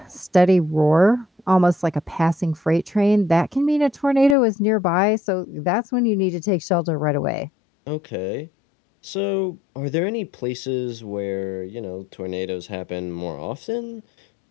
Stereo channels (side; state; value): right; drops out; at 4.4 s